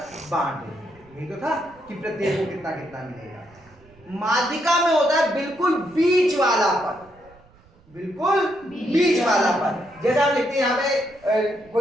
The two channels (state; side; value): noise; right; rumble, 28 dB below the sound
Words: बांट देते। यही तो था कि प्रत्येक को कितना कितना मिलेगा। माध्यिका में होता है बिल्कुल बीच वाला पद, बिल्कुल बीच वाला पद। जैसे हम लिखते हैं यहाँ पे